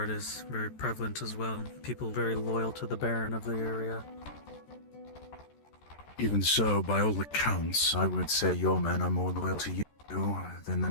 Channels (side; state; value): right; late; 14 ms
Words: is very prevalent as well. People very loyal to the Baron of the area. Even so, by all accounts, I would say your men are more loyal to you than the